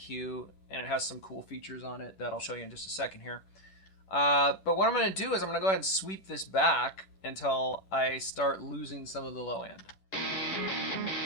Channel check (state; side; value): late; right; 10 ms